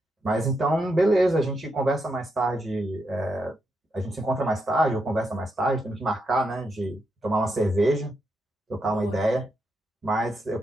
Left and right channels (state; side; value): normal; both; correlation 0.82